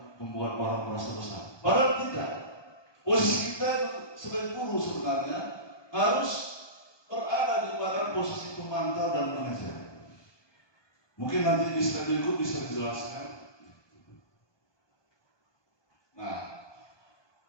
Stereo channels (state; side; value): late; right; 1.2 ms